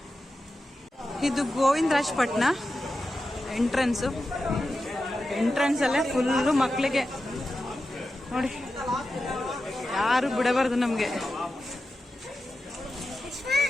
ಇದು ಗೋವಿಂದರಾಜ್ ಪಟ್ನ ಎಂಟ್ರೆನ್ಸು. ಎಂಟ್ರೆನ್ಸಲ್ಲೇ ಫುಲ್ಲು ಮಕ್ಕಳಿಗೆ ನೋಡಿ, ಯಾರು ಬಿಡಬಾರ್ದು ನಮಗೆ.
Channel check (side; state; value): both; normal; correlation 0.91